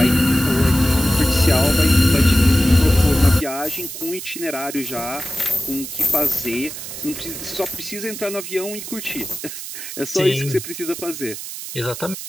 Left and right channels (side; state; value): right; noise; hiss, 9 dB below the sound